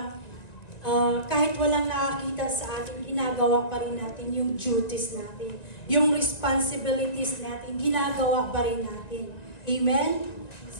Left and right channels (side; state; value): right; late; 1.9 ms